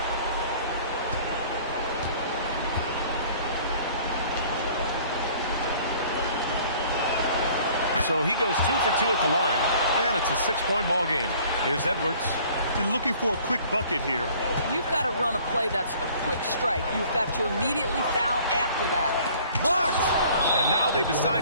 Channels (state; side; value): inverted; both; correlation -0.53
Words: So he goes 2 for 2 at the line, and it's a 6-point ball game. Here's Edwards. And looking for a quick bucket here. You've got to run a play that's a quick strike. You've got to immediately foul after that. Blocked! And now they